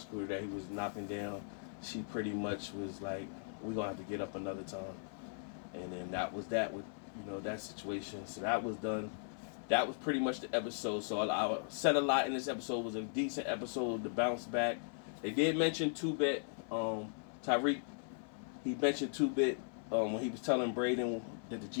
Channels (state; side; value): silent; right; 52 dB below the other